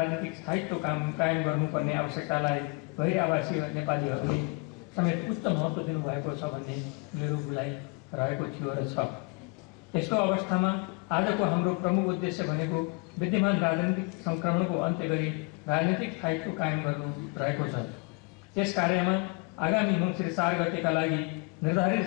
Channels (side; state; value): right; quieter; 30.4 dB